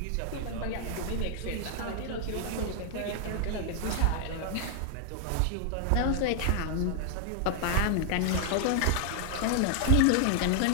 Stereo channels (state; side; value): different; both; correlation 0.00